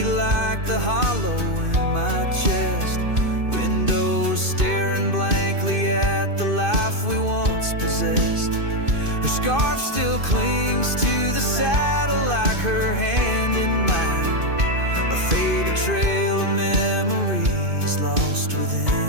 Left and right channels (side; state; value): left; late; 2.5 ms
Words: like the hollow in my chest, windows staring blankly at the life we once possessed. Her scarf still clings to the saddle like her hand in mine, a faded trail of memories lost within